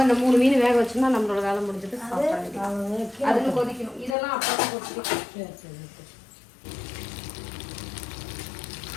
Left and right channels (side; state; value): right; drops out; at 4.2 s